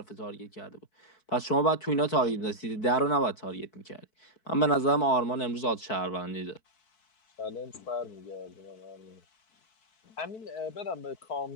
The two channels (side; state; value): right; late; 4.6 ms